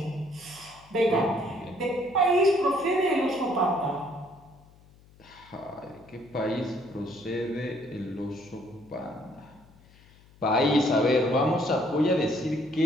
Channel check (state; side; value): noise; left; hum, 26 dB below the sound